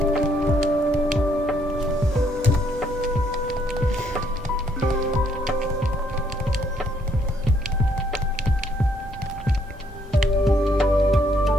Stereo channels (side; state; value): both; normal; correlation 0.69